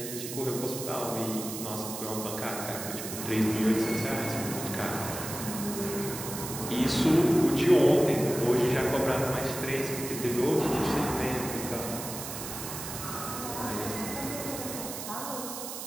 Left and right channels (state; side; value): noise; right; hiss, 7 dB below the sound